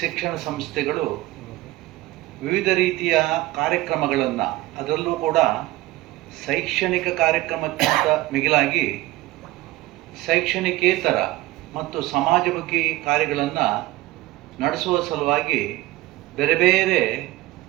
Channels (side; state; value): left; quieter; 18.3 dB